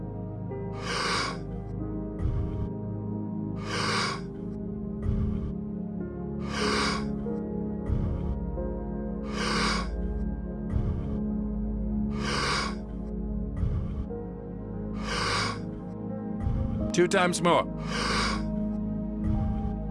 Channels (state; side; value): identical; both; correlation 1.00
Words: Two times more.